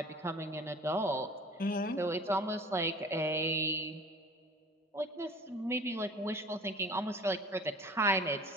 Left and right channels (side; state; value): both; normal; correlation 0.44